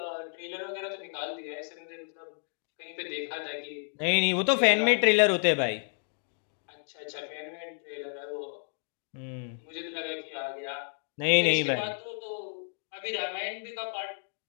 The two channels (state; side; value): silent; right; 57 dB below the other